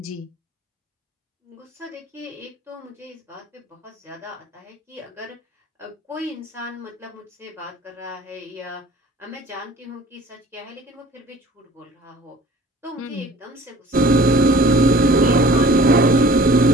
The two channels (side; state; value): both; normal; correlation 0.49